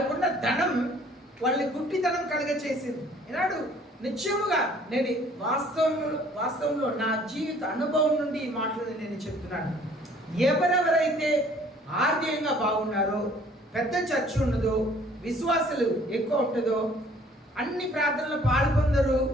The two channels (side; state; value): both; normal; correlation 0.56